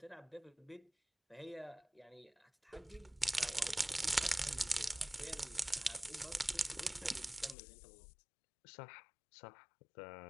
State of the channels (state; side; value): drops out; right; at 7.6 s